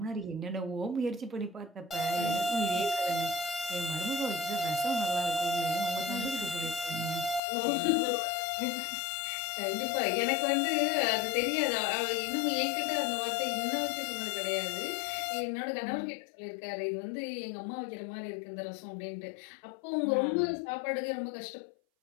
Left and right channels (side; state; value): right; drops out; at 7.4 s